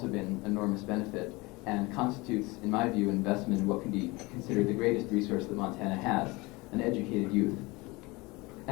been enormous benefit and constitutes, in my view, an investment in what can be considered the greatest resource that Montana has, an educated youth.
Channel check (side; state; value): right; quieter; 23.8 dB